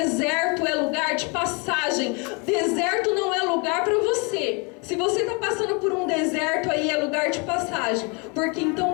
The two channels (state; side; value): quieter; right; 32.2 dB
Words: é lugar de passagem. Deserto não é lugar para você. Se você está passando por um deserto aí, é lugar de passagem. Porque